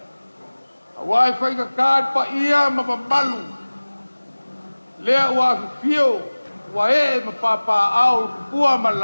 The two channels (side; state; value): both; inverted; correlation -1.00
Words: Wai fai ka kad pa ia ma malu. Lea wa fio wa e ma papa au pua ma